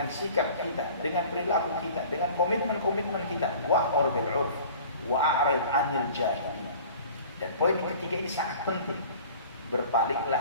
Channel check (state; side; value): inverted; both; correlation -0.45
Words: sikap kita, dengan perilaku kita, dengan komitmen kita. Wa'mur bil 'urf wa'rid 'anil jahilin. Dan poin yang ketiga ini sangat penting.